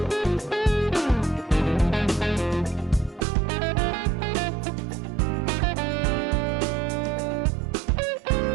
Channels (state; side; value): drops out; left; at 3.2 s